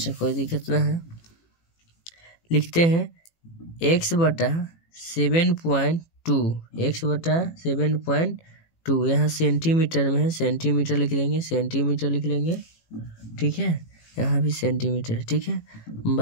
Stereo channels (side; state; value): right; late; 18 ms